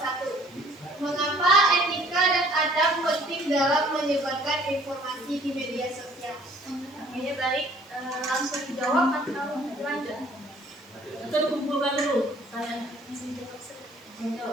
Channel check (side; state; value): right; noise; hiss, 30 dB below the sound